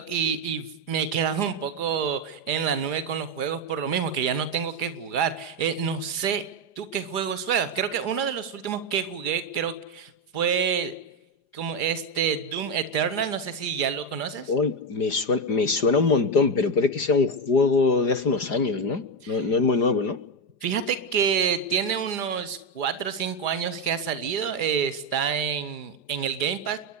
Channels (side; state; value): right; late; 4.9 ms